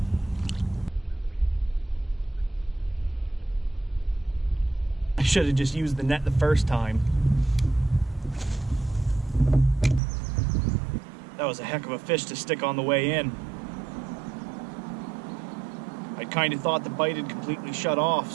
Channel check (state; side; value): drops out; left; at 10.0 s